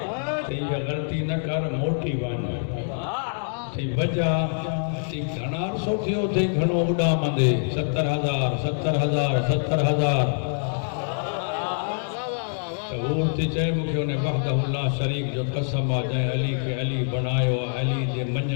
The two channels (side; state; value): right; silent; digital silence